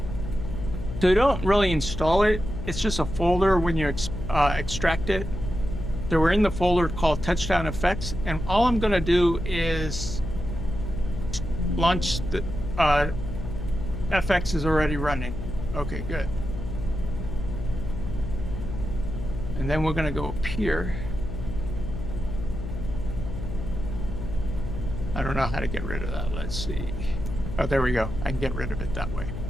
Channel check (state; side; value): noise; left; hum, 6 dB below the sound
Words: So you don't really install it. It's just a folder when you extract it. So we're in the folder called Touchdown Effects, and all I'm going to do is launch the FX is already running. Okay, good. And then we're going to go up here. I don't know how to get rid of that. Let's see. Oh, there we go. I can get rid of it that way.